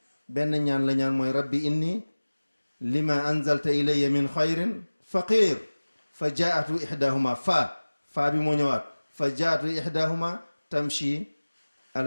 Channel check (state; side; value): inverted; both; correlation -1.00